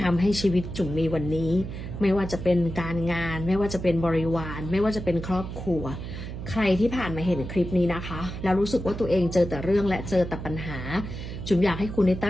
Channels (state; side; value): noise; right; hum, 8 dB below the sound